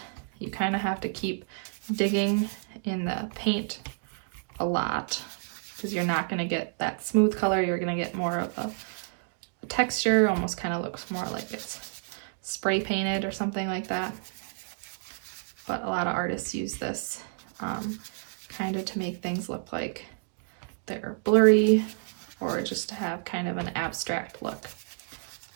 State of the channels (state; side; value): silent; left; digital silence